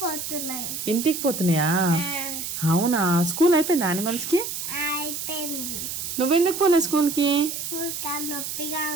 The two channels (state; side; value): noise; right; hiss, 5 dB below the sound